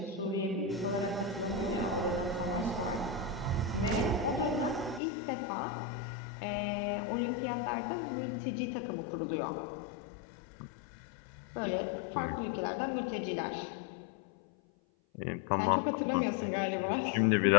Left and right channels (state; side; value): drops out; right; at 5.0 s